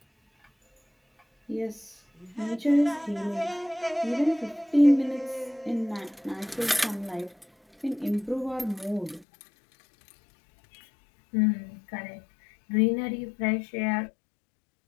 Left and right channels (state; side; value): drops out; right; at 9.2 s